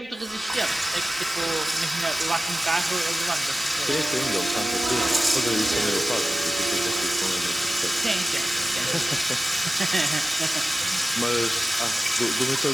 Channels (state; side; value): normal; both; correlation 0.96